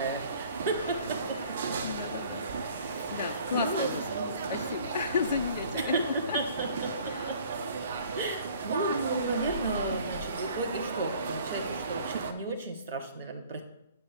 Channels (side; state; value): both; inverted; correlation -0.53